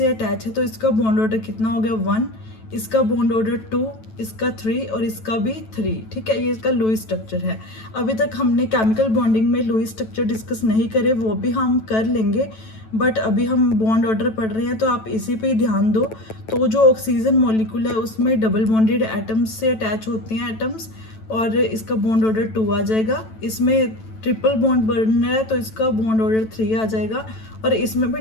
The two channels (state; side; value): late; right; 9.1 ms